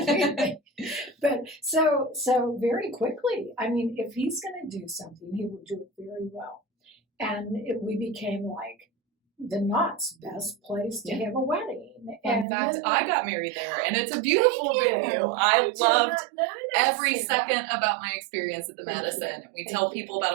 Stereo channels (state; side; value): drops out; left; at 12.5 s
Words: But so very quickly, if he's going to do something, he will do it very well. And we became like the Knott's best place to have a wedding. In fact, I got married there, and it's a beautiful venue. I loved every second about my experience at the Madison. And we tell people about